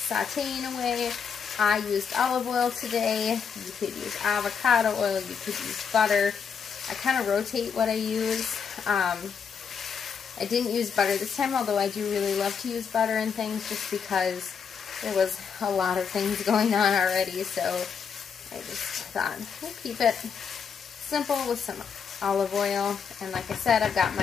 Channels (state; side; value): quieter; right; 6.6 dB